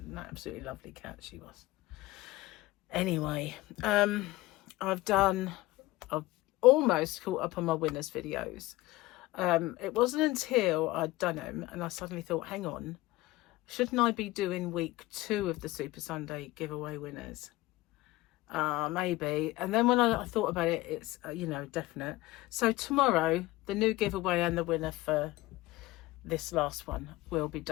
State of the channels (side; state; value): right; quieter; 18.6 dB